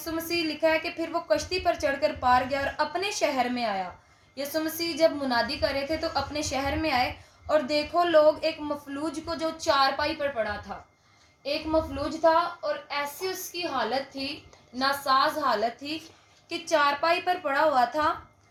مسیح لکھا ہے کہ پھر وہ کشتی پر چڑھ کر پار گیا اور اپنے شہر میں آیا۔ یسوع مسیح جب منادی کر رہے تھے تو اپنے شہر میں آئے، اور دیکھو لوگ ایک مفلوج کو جو چارپائی پر پڑا تھا، ایک مفلوج تھا، اور ایسی اس کی حالت تھی، ناساز حالت تھی کہ چارپائی پر پڑا ہوا تھا،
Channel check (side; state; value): both; identical; correlation 1.00